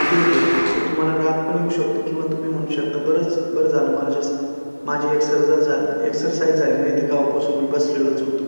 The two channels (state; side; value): inverted; both; correlation -1.00